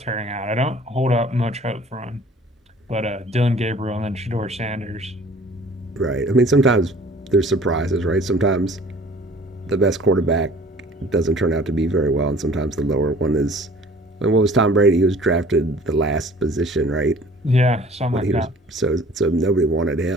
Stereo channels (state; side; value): normal; both; correlation 0.50